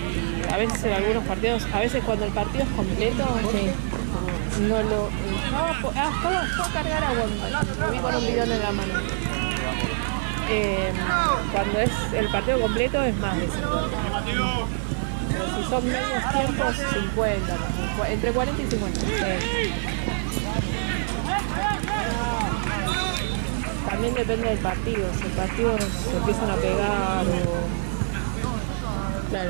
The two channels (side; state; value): left; silent; 60 dB below the other